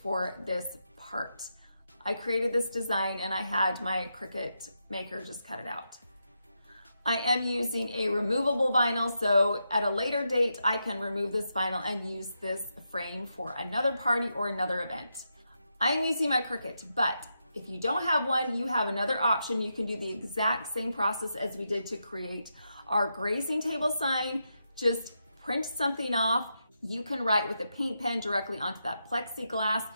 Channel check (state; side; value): inverted; both; correlation -0.85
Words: for this part. I created this design and I had my Cricut maker just cut it out. I am using a removable vinyl, so at a later date, I can remove this vinyl and use this frame for another party or another event. I am using my Cricut, but if you don't have one, you have another option. You can do the exact same process as we did to create our grazing table sign. Just print something off. You can write with a paint pen directly onto that plexiglass